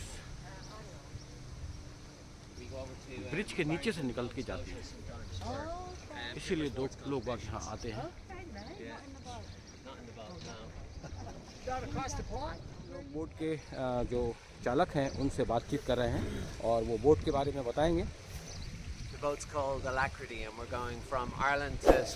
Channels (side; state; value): both; identical; correlation 1.00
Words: ब्रिज के नीचे से निकल के जाती है। इसीलिए दो लोग यहाँ आते हैं। बोट के जो चालक हैं उनसे बातचीत कर रहे हैं और वो बोट के बारे में बताएंगे। The boat's called Alacrity and we're going from Ireland to